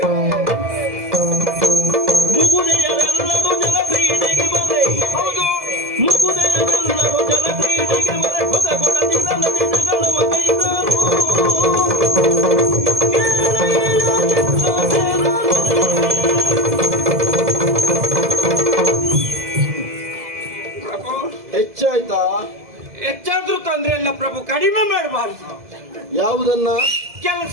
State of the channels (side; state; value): left; late; 2.0 ms